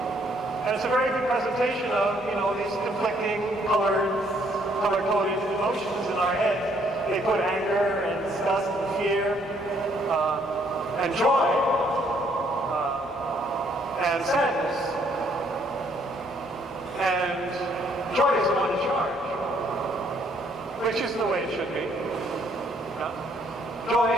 And it's a very good presentation of, these conflicting color-coded emotions in our heads. They put anger and disgust and fear and joy and sadness. And joy is the one in charge, which is the way it should be. Yeah?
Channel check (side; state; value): both; normal; correlation 0.67